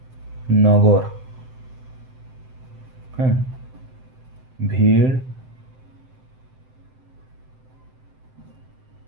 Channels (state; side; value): late; left; 7.8 ms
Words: নগর। হ্যাঁ, ভিড়